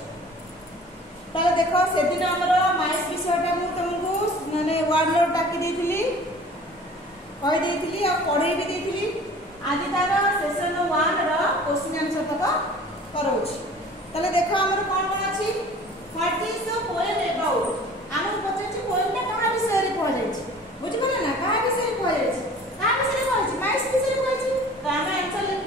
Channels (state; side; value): normal; both; correlation 0.46